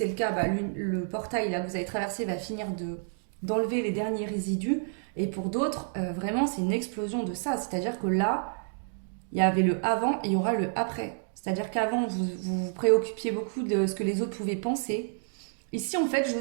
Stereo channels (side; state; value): left; silent; digital silence